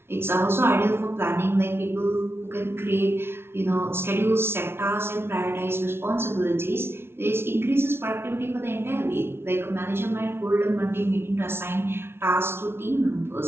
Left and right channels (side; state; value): left; late; 0.12 ms